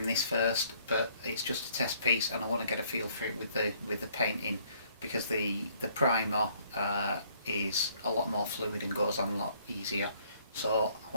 this first, but it's just a test piece and I want to get a feel for it with the painting, because the primer is a lot more fluid and goes on a lot easier. So I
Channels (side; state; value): both; inverted; correlation -0.63